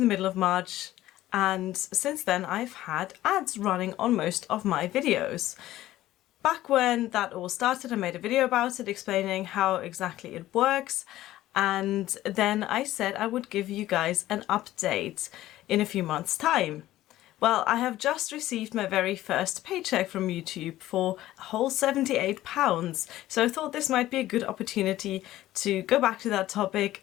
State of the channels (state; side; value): quieter; right; 14.9 dB